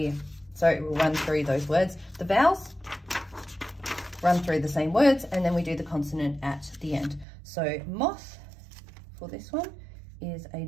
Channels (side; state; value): left; drops out; at 7.2 s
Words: so we'll run through those words. The vowels, run through the same words, and then we do the consonant at the end. So moth, for this one, is a